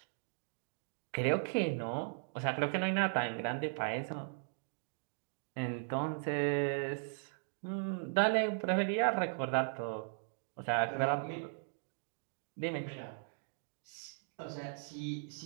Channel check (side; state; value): left; silent; digital silence